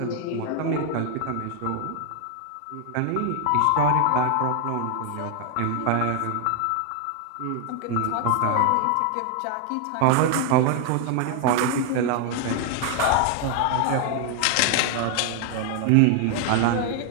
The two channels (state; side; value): different; both; correlation 0.00